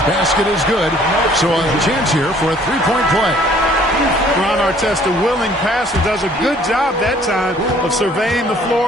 Basket is good. So a chance here for a 3-point play. Ron Artest, a willing passer, does a good job that time of surveying the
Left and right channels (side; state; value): both; normal; correlation 0.58